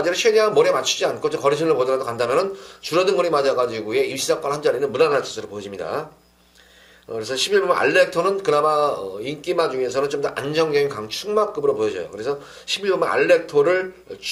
최대한 몰에 맞추지 않고 거리순을 보더라도 간다면은 줄어든 거리 맞아가지고의 입시사건 한 자리는 무난할 것으로 보여집니다. 그래서 11번 알렉토는 그나마 인기마 중에서는 좀 더 안정적인 강축마급으로 보여져요. 그래서 11번 알렉토를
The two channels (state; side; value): identical; both; correlation 1.00